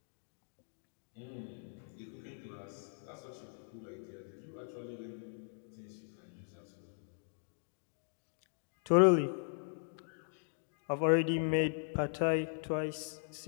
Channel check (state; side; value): silent; right; digital silence